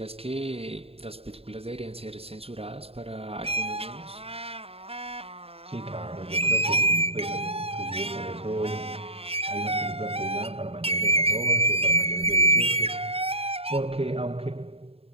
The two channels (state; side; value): late; left; 0.28 ms